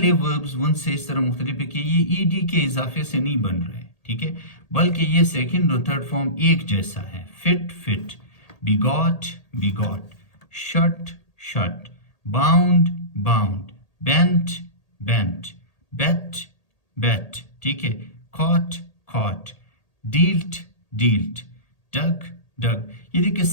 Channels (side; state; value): right; late; 1.8 ms